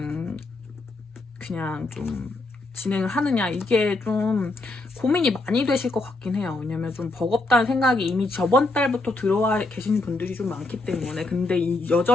그냥 좀 진행을 하느냐, 이게 좀 고민이 많이 되실 것 같긴 해요. 왜냐면 좀 버겁다는 생각이 이미 저번 달부터 들어와 계시는 분들이 좀 많기 때문에. 근데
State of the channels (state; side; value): quieter; right; 3.0 dB